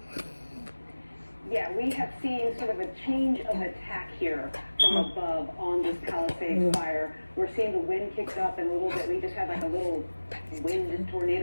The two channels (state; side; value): inverted; both; correlation -1.00